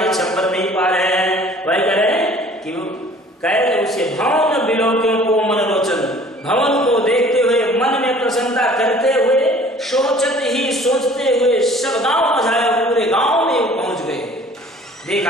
छप्पर नहीं पा रहे हैं। वही कह रहे हैं कि कह उसे भवन बिलोक्यों को मनोलोचन, भवन को देखते हुए मन में प्रसन्नता करते हुए, सोचते ही सोचते हुए सब गांव मझाया, पूरे गांव में पहुंच देखा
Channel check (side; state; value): both; normal; correlation 0.51